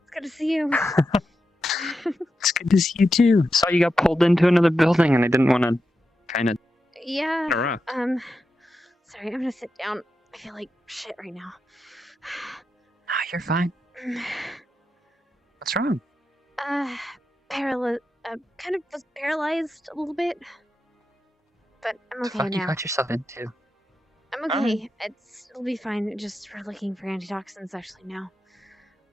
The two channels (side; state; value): both; normal; correlation 0.88